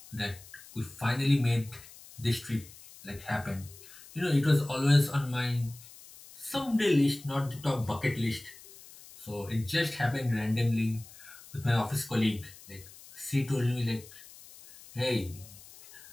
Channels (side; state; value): left; noise; hiss, 20 dB below the sound